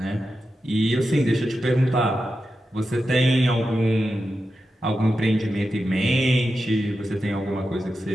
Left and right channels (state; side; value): normal; both; correlation 0.90